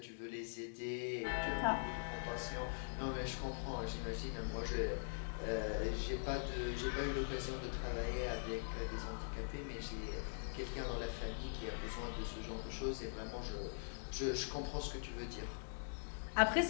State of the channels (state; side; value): silent; right; digital silence